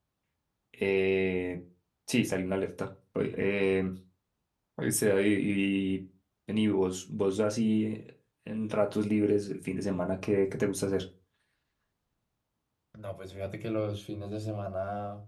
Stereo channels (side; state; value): both; identical; correlation 1.00